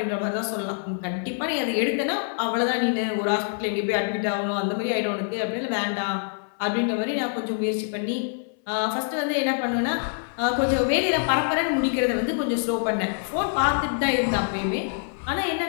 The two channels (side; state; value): right; silent; 60 dB below the other